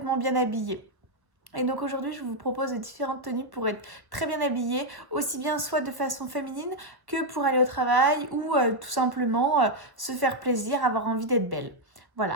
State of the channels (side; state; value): left; late; 1.0 ms